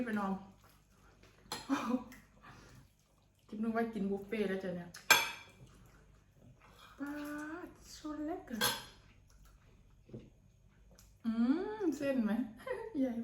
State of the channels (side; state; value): both; identical; correlation 1.00